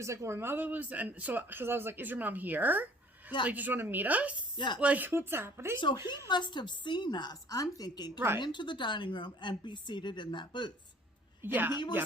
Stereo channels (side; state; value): both; normal; correlation 0.53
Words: like, "Well, my mother lives," and so, because I was like, "Is your mom here? Yeah. Like, just want to meet us? Yeah. Like, what's happening?" So he must have seen us, I'm thinking, come into the dining room and be seated in that booth. Yeah. And he